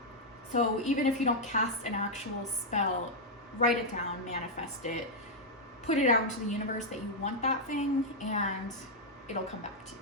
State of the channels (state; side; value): normal; both; correlation -0.03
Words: So even if you don't cast an actual spell, write it down, manifest it, put it out into the universe that you want that thing, and it'll come back to you.